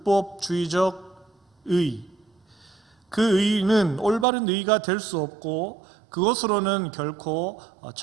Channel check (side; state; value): left; drops out; at 4.2 s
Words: 의, 그 의는 올바른 의가 될 수 없고 그것으로는 결코